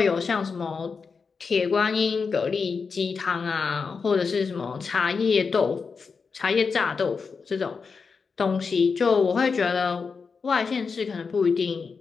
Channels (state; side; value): quieter; right; 5.2 dB